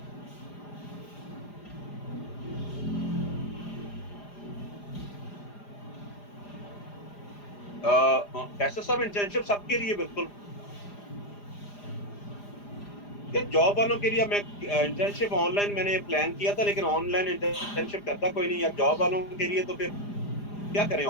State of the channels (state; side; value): late; right; 4.9 ms